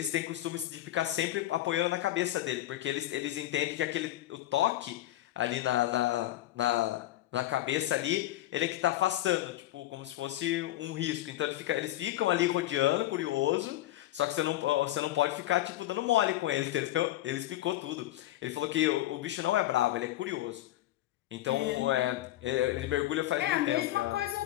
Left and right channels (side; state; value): right; quieter; 14.9 dB